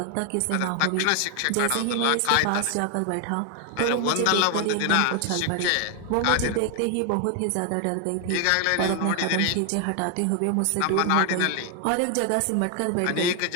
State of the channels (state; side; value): different; both; correlation 0.00